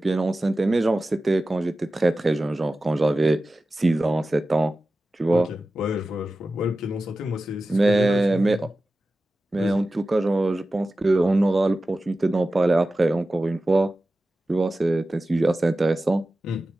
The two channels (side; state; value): both; normal; correlation 0.94